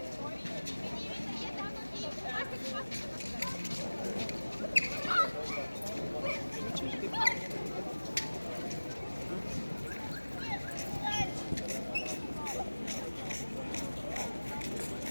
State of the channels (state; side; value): inverted; both; correlation -1.00